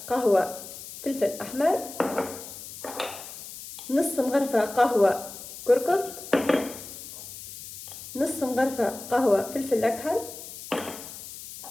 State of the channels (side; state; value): left; noise; hiss, 13 dB below the sound